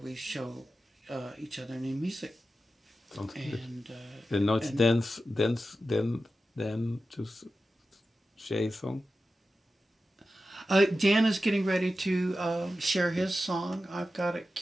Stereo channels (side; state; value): both; normal; correlation 0.92